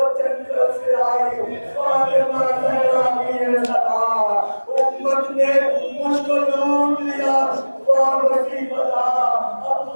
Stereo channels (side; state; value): both; inverted; correlation -1.00